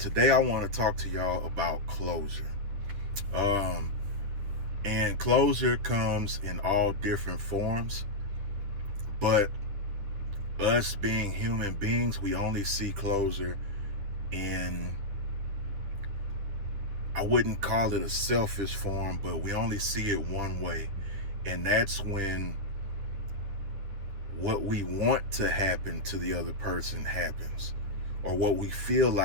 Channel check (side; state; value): left; late; 9.8 ms